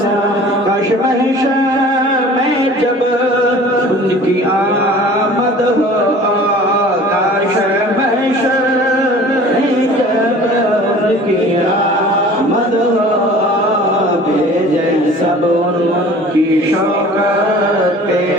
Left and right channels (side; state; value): both; normal; correlation 0.45